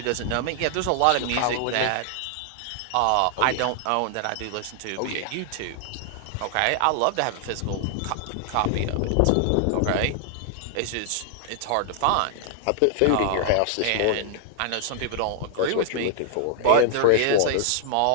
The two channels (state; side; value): different; both; correlation -0.01